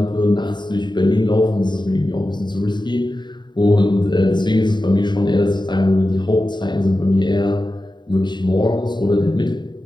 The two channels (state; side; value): late; right; 0.22 ms